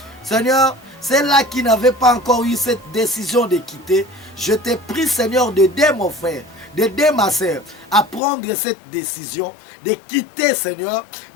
Seigneur, celle-là qui n'avait pas encore eu cette décision de quitter, je te prie, Seigneur, d'aider mon frère, d'aider ma sœur à prendre cette décision, de quitter, Seigneur,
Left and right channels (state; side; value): drops out; right; at 8.2 s